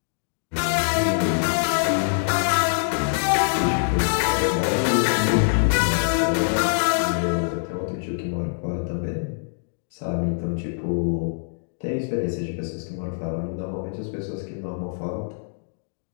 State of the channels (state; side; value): silent; right; digital silence